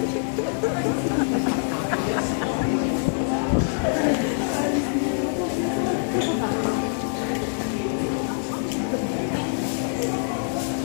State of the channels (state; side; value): silent; right; 62 dB below the other